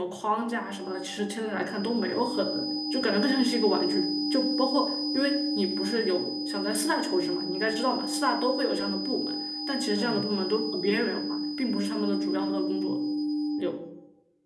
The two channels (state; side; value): identical; both; correlation 1.00